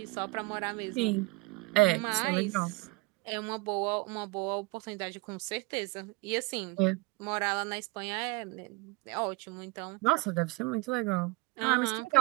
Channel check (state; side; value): quieter; left; 24.2 dB